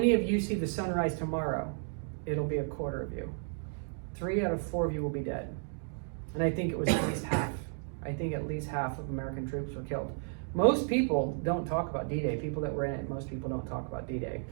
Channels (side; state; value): left; silent; 55 dB below the other